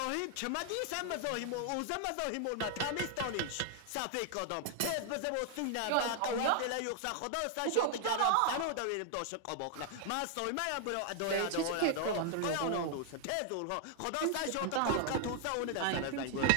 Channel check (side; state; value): both; different; correlation 0.00